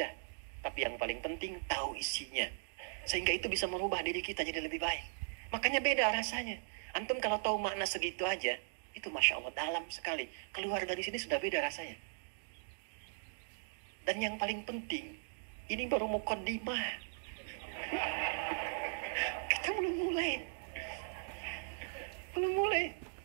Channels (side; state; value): left; silent; digital silence